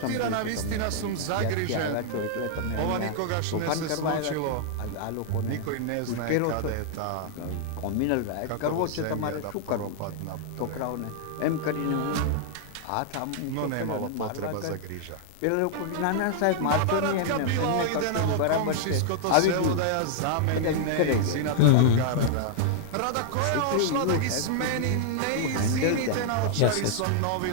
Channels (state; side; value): different; both; correlation -0.01